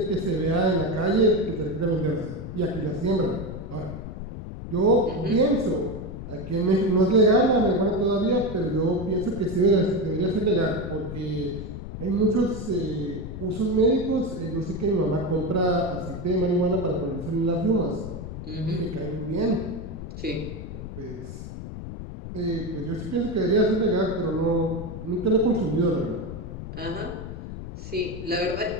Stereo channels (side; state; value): left; noise; rumble, 9 dB below the sound